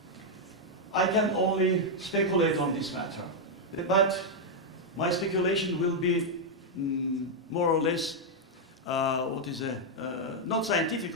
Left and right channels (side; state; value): both; normal; correlation -0.02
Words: I can only speculate on this matter, but my speculation will be more or less, not scientific,